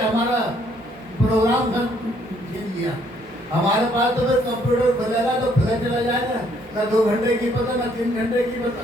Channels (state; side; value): normal; both; correlation 0.66